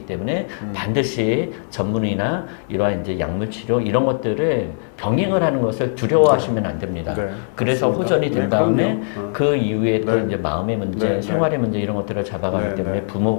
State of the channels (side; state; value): right; silent; digital silence